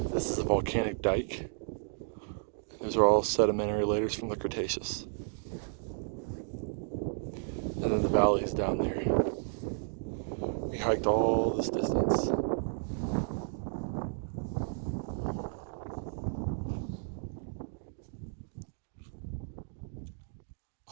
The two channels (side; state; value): left; silent; digital silence